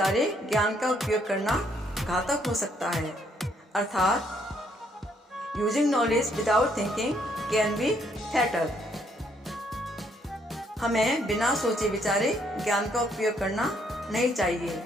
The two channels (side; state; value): both; normal; correlation 0.70